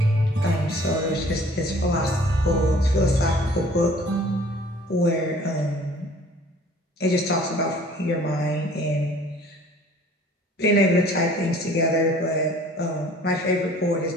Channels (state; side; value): normal; both; correlation 0.52